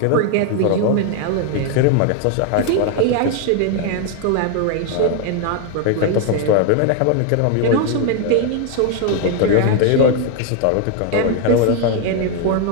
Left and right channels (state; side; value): different; both; correlation 0.01